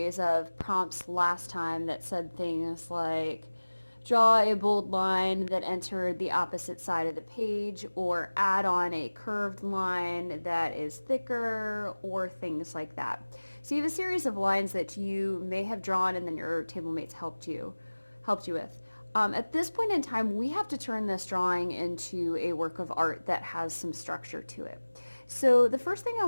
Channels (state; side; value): inverted; both; correlation -1.00